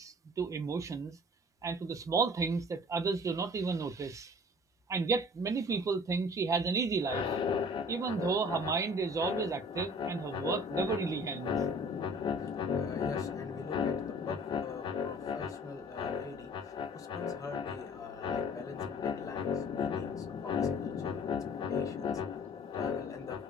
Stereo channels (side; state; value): both; normal; correlation 0.48